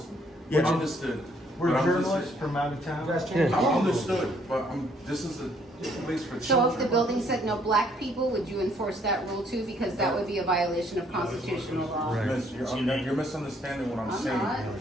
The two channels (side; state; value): both; normal; correlation 0.66